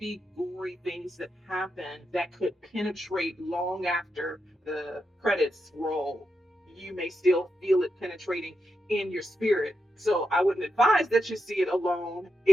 gory things that happen that could penetrate long after the credits roll. You may still feel it penetrating in your spirit. So I wouldn't advise that you see it alone.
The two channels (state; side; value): normal; both; correlation 0.86